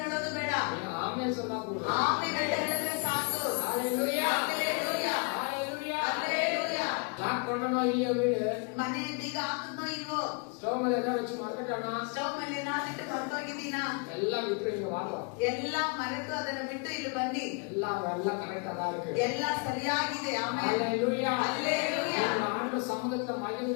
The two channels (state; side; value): quieter; right; 35.4 dB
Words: ಹೇಳೋದು ಬೇಡ. நீங்க ஆமென் சொன்னா போதும். ಆಮೇಲೆ ಹೇಳಿದ್ರೆ ಸಾಕು. ஹalleluya. ஹalleluya. ஹalleluya. ஹalleluya. லாக் பண்ணணும் இல்லையா வீடு? ಮನೆ ಬೀಗ ಹಾಕಿದ್ನೋ ಇಲ್ವೋ? ஸ்டவ் மேல என்ன வச்சு மறந்துட்டானா? ಸ್ಟವ್ ಮೇಲೆ ಏನಾಗಿಟ್ಟು ಮರ್ತೋಗಿದ್ದೀನಾ? எல்லாம் விட்டு இங்க வாங்க, ಎಲ್ಲ ಮರೆತು ಅದನ್ನು ಬಿಟ್ಟು ಇಲ್ಲಿ ಬನ್ನಿ. எல்லாம் கரெக்டா தான் இருக்கு. ಎಲ್ಲ ಸರಿಯಾಗಿದೆ. ಆಮೇಲೆ ஹalleluya. ஹalleluya. ஆண்டு சமூகத்துல